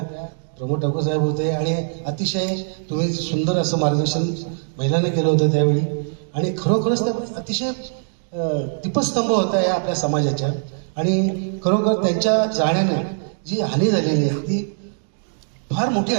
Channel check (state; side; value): silent; left; digital silence